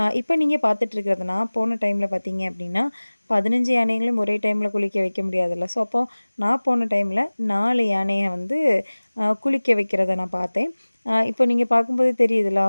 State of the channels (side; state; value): both; inverted; correlation -1.00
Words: இப்ப நீங்க பார்த்துட்டு இருக்கிறது நான் போன டைம்ல பார்த்தீங்க அப்படின்னா, 15 யானைகளையும் ஒரே டைம்ல குளிக்க வைக்க முடியாதுல்ல. ஸோ, அப்போ நான் போன டைம்ல 4 யானைய வந்து குளிக்க வைக்கிறத நான் பார்த்தேன். இப்போ நீங்க பார்க்கும்போது தெரியுதுல்ல,